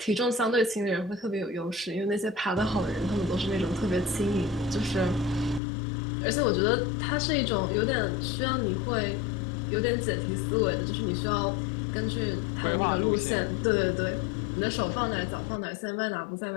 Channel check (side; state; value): right; drops out; at 5.6 s